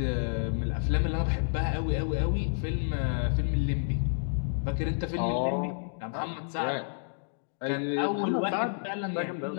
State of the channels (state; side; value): silent; right; digital silence